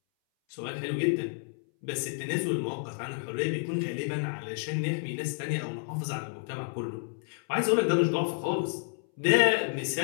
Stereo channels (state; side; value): silent; right; 58 dB below the other